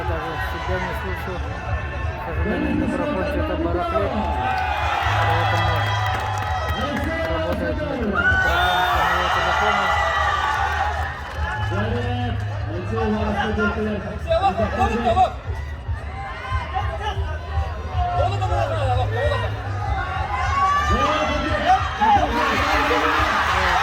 даже себя не слышу. К сожалению, микрофон что-то барахлит, поэтому работает микрофон самого телефона.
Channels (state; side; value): identical; both; correlation 1.00